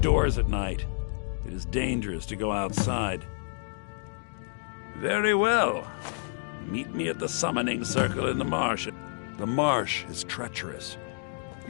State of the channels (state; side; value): silent; right; digital silence